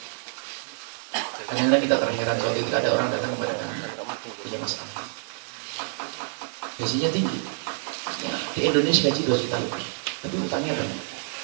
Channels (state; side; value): silent; left; 60 dB below the other